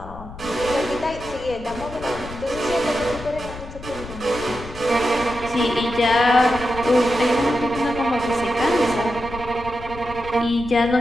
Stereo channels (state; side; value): noise; left; rumble, 13 dB below the sound